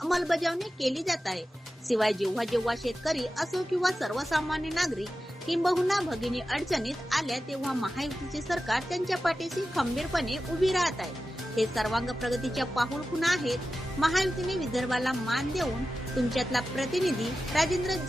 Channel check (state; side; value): normal; both; correlation 0.93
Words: केली जात आहे। शिवाय जेव्हा जेव्हा शेतकरी असो किंवा सर्वसामान्य नागरिक किंबहुना भगिनी अडचणीत आल्या तेव्हा महायुतीचे सरकार त्यांच्या पाठीशी खंबीरपणे उभी राहत आहे। हे सर्वांग प्रगतीच्या पाऊल खुणा आहेत। महायुतीने विदर्भाला मान देऊन तुमच्यातला प्रतिनिधी राजेंद्र